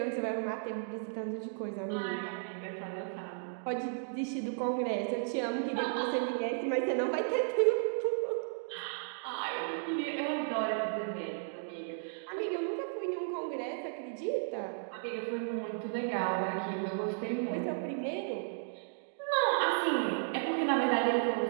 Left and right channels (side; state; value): left; silent; digital silence